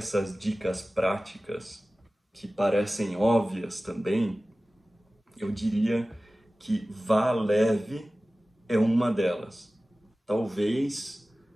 dicas práticas, que parecem óbvias também, eu diria que vá leve é uma delas. Talvez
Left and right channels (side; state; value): both; normal; correlation 0.97